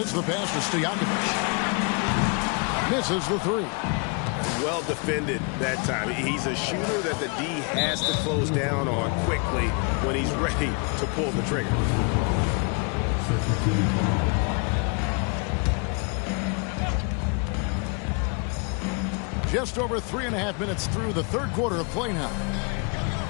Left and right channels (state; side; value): quieter; right; 34.5 dB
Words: the pass to Stojakovic. Misses the 3. Well defended that time. He's a shooter that the D has to close down on quickly when he's ready to pull the trigger. Just over 3.5 minutes through the third quarter of play now.